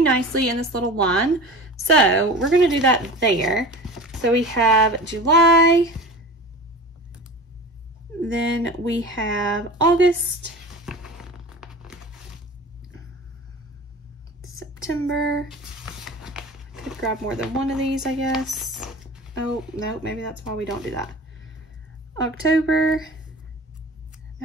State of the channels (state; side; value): normal; both; correlation 0.36